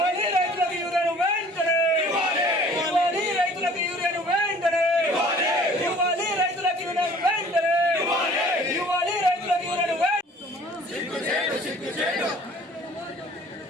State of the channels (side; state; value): both; normal; correlation 0.51